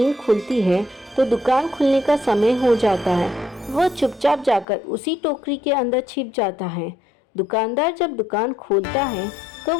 खुलती है तो दुकान खुलने का समय हो जाता है। वह चुपचाप जाकर उसी टोकरी के अंदर छिप जाता है। दुकानदार जब दुकान खोलता है तो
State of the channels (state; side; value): drops out; right; at 4.7 s